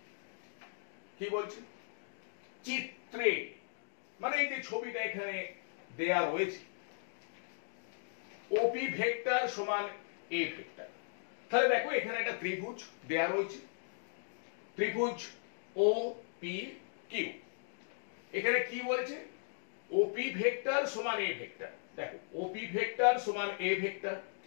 কি বলছে চিত্রে, মানে এই যে ছবিটা এখানে দেয়া রয়েছে ওপি ভেক্টর সমান এ ভেক্টর। তাহলে দেখো এখানে একটা ত্রিভুজ দেয়া রয়েছে, ত্রিভুজ ও পি কিউ। এখানে কি বলেছে ওপি ভেক্টর সমান এ ভেক্টর। দেখো ওপি ভেক্টর সমান A vector,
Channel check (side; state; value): right; silent; digital silence